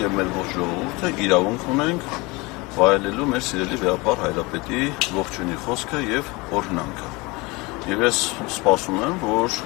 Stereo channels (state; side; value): quieter; right; 24.6 dB